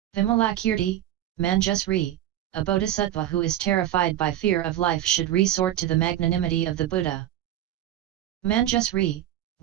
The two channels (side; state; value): left; quieter; 12.7 dB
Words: Vimalakirti, Manjusri, a bodhisattva who is terrified by fear of life should resort to the magnanimity of the Buddha. Manjusri,